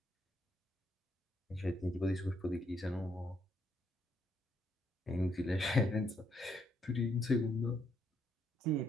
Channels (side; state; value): both; normal; correlation 0.74